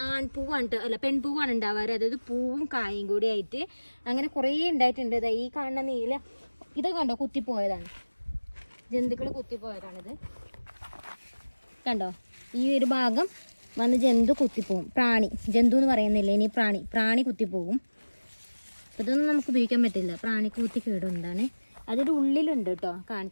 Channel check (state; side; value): inverted; both; correlation -1.00